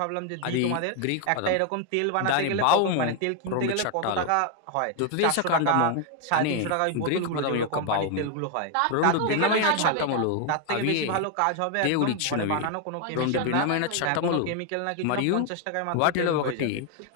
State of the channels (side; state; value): both; different; correlation 0.01